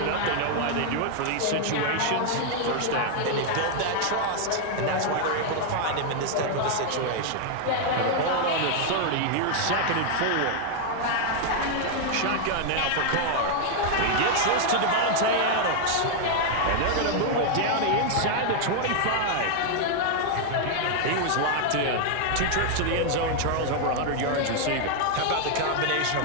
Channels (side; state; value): both; different; correlation 0.00